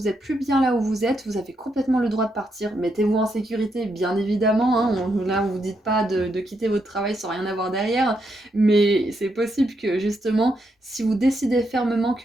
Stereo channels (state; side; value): normal; both; correlation 0.80